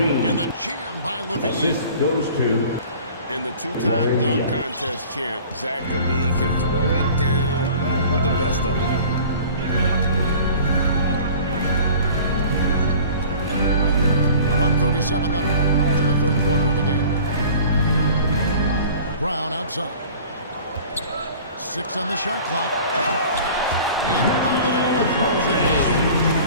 And the jam by Levine. Assist goes to And the two-time dunk contest champ, Zach Levine, can throw it down with the best of them. .137 left in the third quarter of the game. Brown outside. 6 on the shot clock. And Holiday throws it in.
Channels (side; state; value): both; inverted; correlation -0.45